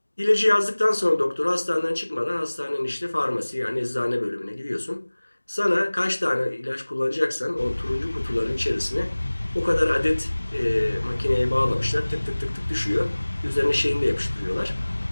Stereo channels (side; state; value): both; inverted; correlation -1.00